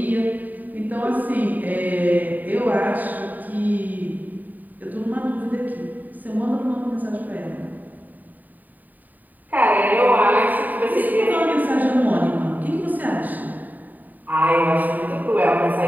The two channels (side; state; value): left; late; 0.085 ms